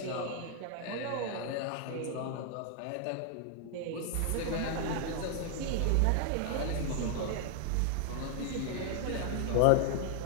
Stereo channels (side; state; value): both; different; correlation 0.00